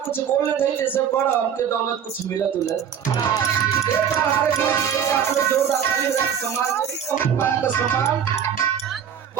कुछ बोलने दें जैसे बड़ा हमके दौलत कुछ मिलत उलत। हमारे जोरदार सम्मान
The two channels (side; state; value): left; quieter; 8.5 dB